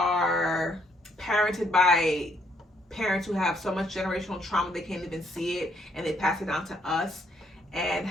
parented by parents who have so much generational trauma they can't even see it, and they pass it down to us. And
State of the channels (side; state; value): both; normal; correlation 0.71